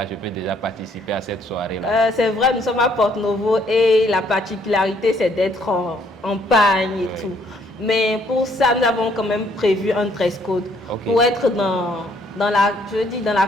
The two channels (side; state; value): both; normal; correlation 0.66